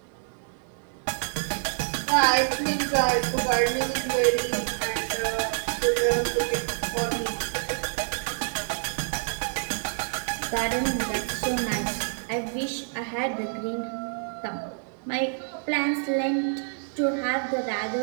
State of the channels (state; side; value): silent; left; 56 dB below the other